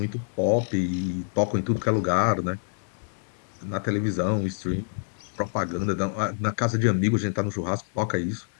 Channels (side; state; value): right; silent; digital silence